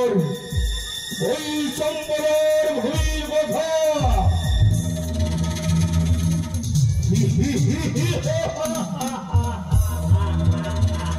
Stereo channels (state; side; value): identical; both; correlation 1.00